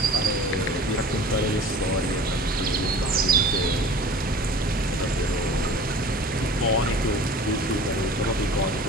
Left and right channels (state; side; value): normal; both; correlation 0.42